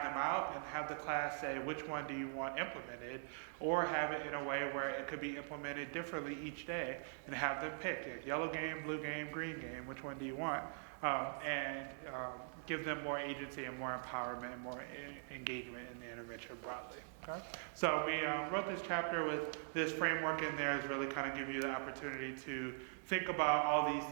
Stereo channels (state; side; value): silent; left; digital silence